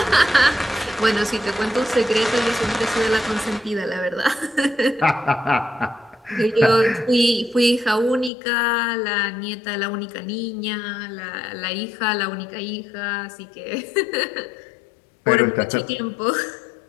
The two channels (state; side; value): drops out; right; at 8.3 s